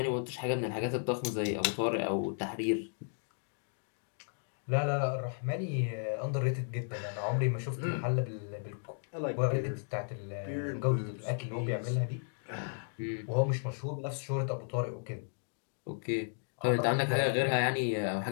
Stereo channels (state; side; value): silent; right; digital silence